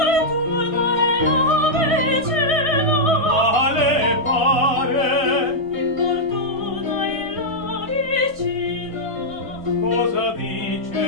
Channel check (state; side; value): late; left; 1.5 ms